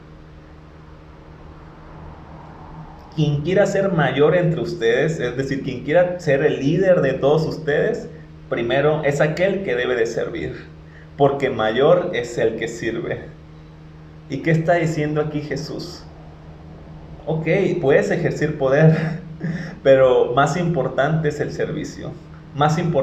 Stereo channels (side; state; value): both; identical; correlation 1.00